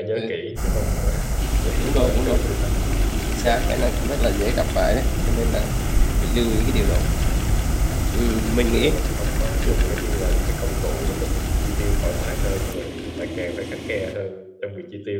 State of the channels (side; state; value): both; identical; correlation 1.00